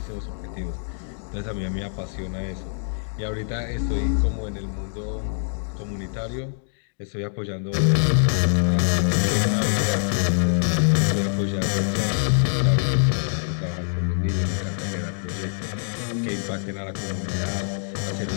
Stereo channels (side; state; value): right; silent; digital silence